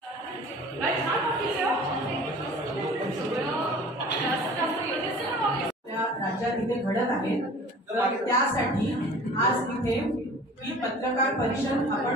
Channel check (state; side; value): normal; both; correlation 0.45